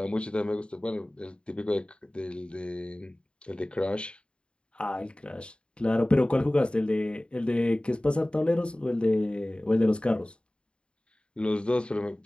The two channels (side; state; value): right; late; 0.054 ms